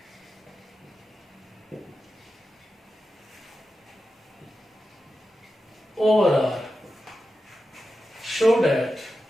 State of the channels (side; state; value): both; normal; correlation 0.91